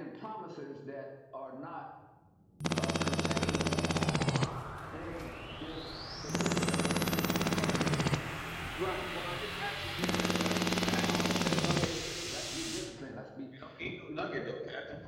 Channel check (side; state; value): both; identical; correlation 1.00